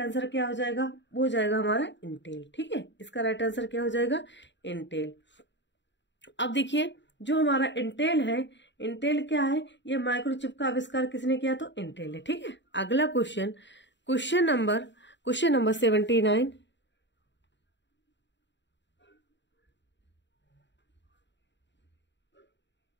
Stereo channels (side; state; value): right; late; 0.52 ms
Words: क्या हो जाएगा? वो हो जाएगा हमारा इंटेल। ठीक है, इसका राइट आंसर क्या हो जाएगा? इंटेल। अब देखिए जो हमारा इंटेल है, इंटेल क्या है? ये माइक्रोचिप का आविष्कार किसने किया? तो इंटेल है। ठीक है, अगला question number 79।